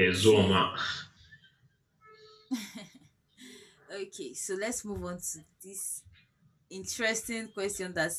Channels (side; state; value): both; identical; correlation 1.00